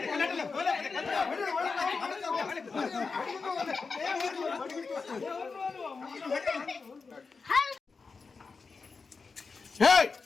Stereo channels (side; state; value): right; quieter; 4.6 dB